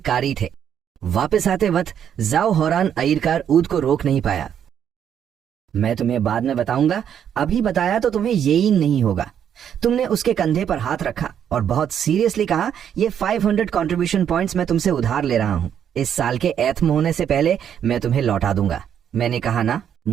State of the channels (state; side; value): quieter; left; 9.0 dB